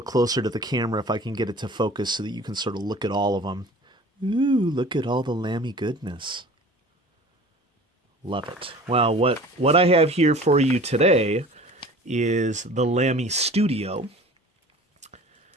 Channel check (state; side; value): normal; both; correlation 0.44